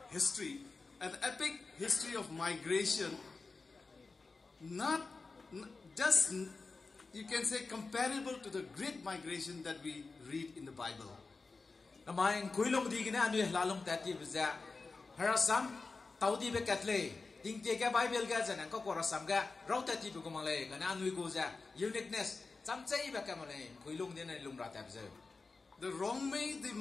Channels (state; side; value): quieter; right; 4.0 dB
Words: history of migration. Not just, you can say, comparable to the great migration that we read in the Bible. Namaing kuilong di gina anu lalong tati bza harasam taudi be katle ding te ka Bible ga janang ko korasam ga raw tati bu kumale kana anu go ja uniqueness chamchai ba kamale kuilong din na lumra ta bza. The Rongmei, they